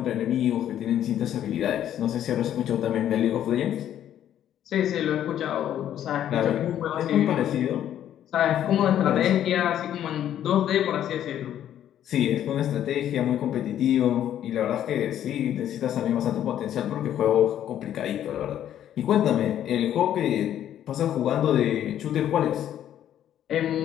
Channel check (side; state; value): right; quieter; 10.9 dB